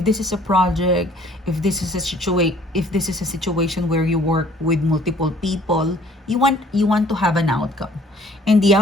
this is a project, if this is a situation where you work with multiple people, you want to have an outcome, and the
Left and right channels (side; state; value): both; normal; correlation 0.57